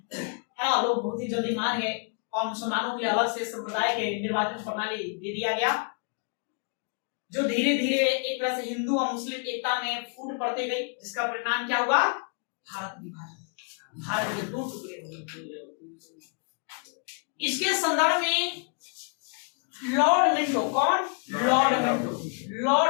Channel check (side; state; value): right; quieter; 39.7 dB